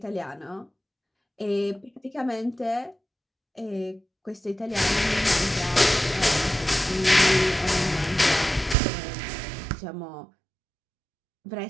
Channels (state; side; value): drops out; left; at 8.8 s